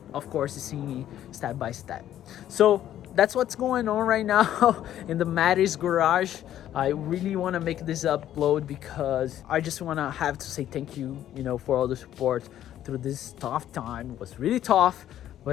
of course seeing step by step. So that's what's going on right now in the Maddie's garage. I really want to make this upload because I just want to have to say thank you, for all the support through this tough time. It was really tough,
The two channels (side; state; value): right; quieter; 11.7 dB